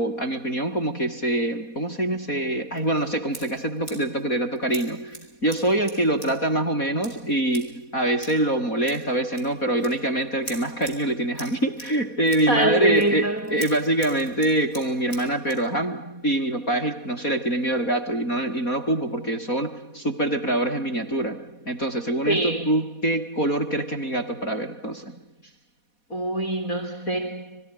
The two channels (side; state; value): right; late; 4.2 ms